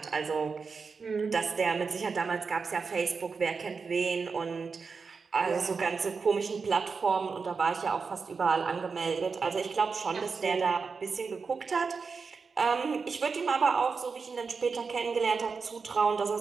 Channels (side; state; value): left; quieter; 5.0 dB